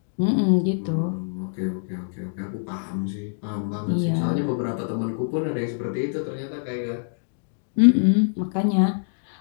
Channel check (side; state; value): right; silent; digital silence